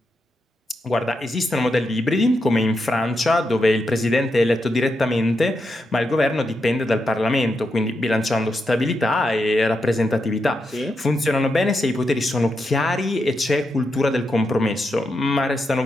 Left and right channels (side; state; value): both; normal; correlation 0.85